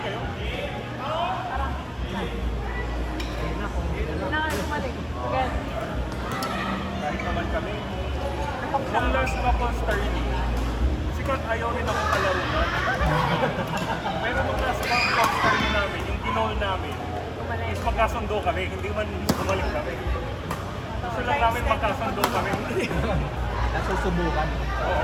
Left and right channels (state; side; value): identical; both; correlation 1.00